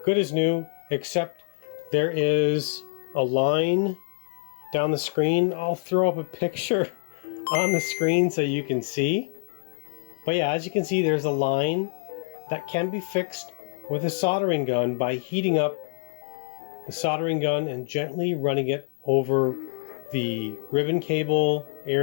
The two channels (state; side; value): silent; right; digital silence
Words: good as new, except there is a line down the screen. I'll throw up a picture on the screen so you can see. But yeah, as you can see, there's a line that can be fixed with a soldering gun by heating up the soldering gun and gently running it over the ribbon cable